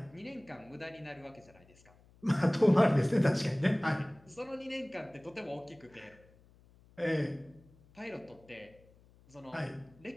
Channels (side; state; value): left; noise; hum, 27 dB below the sound